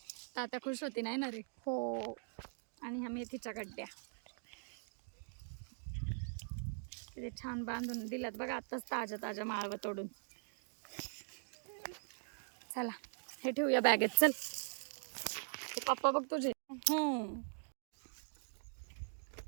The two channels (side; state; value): left; silent; digital silence